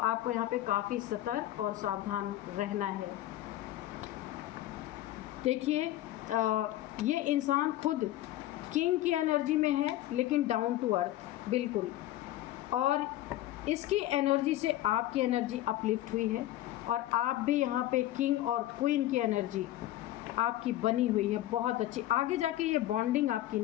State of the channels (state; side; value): quieter; right; 14.5 dB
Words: यहाँ पे काफ़ी सतर्क और सावधान रहना है। देखिए ये इंसान खुद किंग की एनर्जी में है लेकिन डाउन टू अर्थ बिल्कुल, और इसकी एनर्जी से आपकी एनर्जी अपलिफ्ट हुई है, और आप भी यहाँ पे किंग और क्वीन की एनर्जी आपकी बनी हुई है बहुत अच्छी। आगे जाके ये बॉन्डिंग आपकी